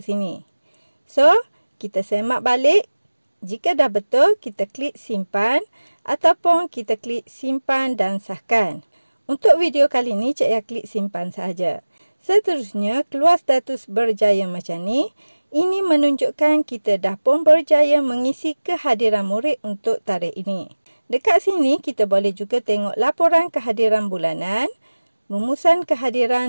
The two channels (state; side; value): inverted; both; correlation -1.00